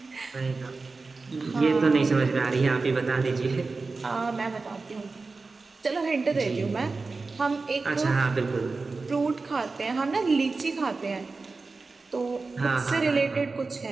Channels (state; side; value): quieter; left; 3.9 dB